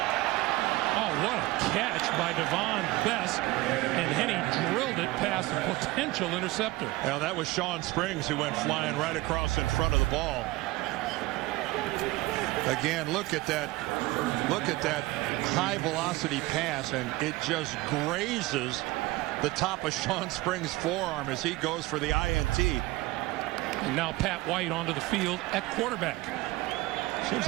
Oh, what a catch by Devon Best. And Henne drilled it past the potential interceptor. Now, that was Sean Springs who went flying right across in front of the ball. Again, look at that high velocity pass, and it just grazes the top of Sean Springs' forearm as he goes for the INT. And now Pat White onto the field at quarterback. Seems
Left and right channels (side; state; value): left; quieter; 19.7 dB